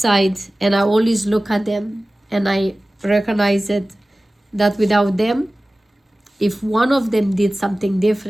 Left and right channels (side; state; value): both; normal; correlation 0.97